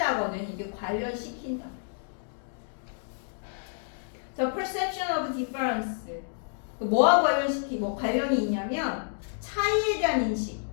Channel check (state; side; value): silent; right; digital silence